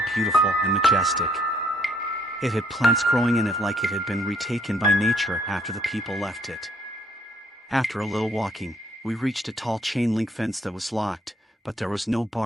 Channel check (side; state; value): both; normal; correlation 0.66